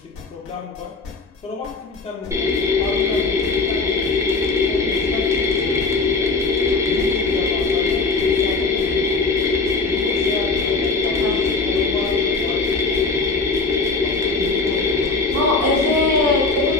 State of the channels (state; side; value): quieter; right; 3.9 dB